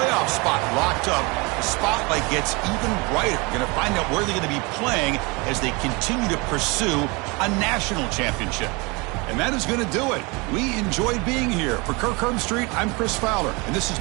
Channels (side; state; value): left; quieter; 27.3 dB